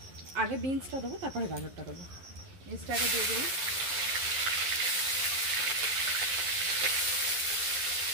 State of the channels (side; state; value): left; late; 11 ms